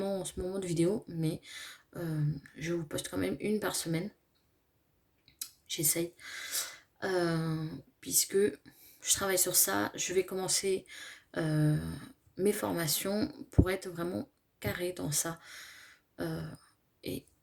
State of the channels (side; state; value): both; identical; correlation 1.00